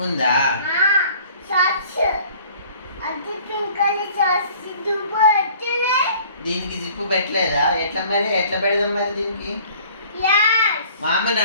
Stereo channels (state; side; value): inverted; both; correlation -0.52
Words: ఉందా? దీనికి జిప్పు పెట్టలేదా? ఎట్లా మరి ఎట్లా పెడదాం మరి దీనికి? మా అమ్మని